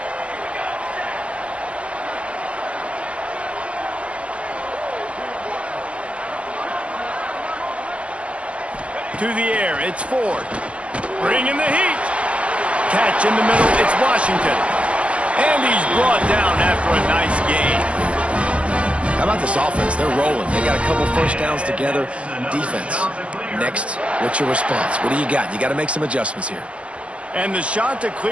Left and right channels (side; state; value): left; late; 0.061 ms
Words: To the air, it's Ford. Bringing the heat. Catch in the middle, it's Washington. And he's brought down after a nice gain. How about this offense? They're rolling. They got a couple first downs together. Defense. Next, what's your response? What do you got? You got to make some adjustments here. And the